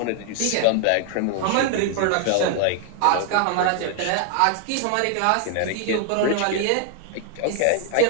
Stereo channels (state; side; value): different; both; correlation 0.00